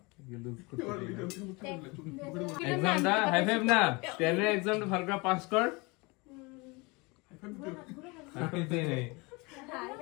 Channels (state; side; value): quieter; right; 26.7 dB